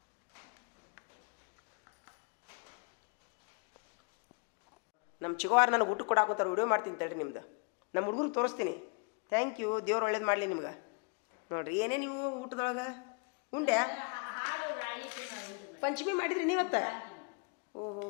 ನಮ್ಮ ಚಿಗುವಾರ ನನಗೆ ಊಟ ಕೊಡಾಕೋತಾರೆ ವಿಡಿಯೋ ಮಾಡ್ತೀನಿ ತಡ್ರಿ ನಿಮ್ದು ನಮ್ಮ ಹುಡುಗರು ತೋರಿಸ್ತೀನಿ ಥ್ಯಾಂಕ್ ಯು ದೇವ್ರು ಒಳ್ಳೇದು ಮಾಡಲಿ ನಿಮ್ಗೆ ನೋಡಿರಿ ಏನೇ ನೀವು ಊಟದೊಳಗೆ ಉಂಡೆ ಪಂಚಮಿ ಮಾಡಿದ್ರಿ ನೀವತ್ತ ಓಹೋ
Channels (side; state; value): right; quieter; 35.9 dB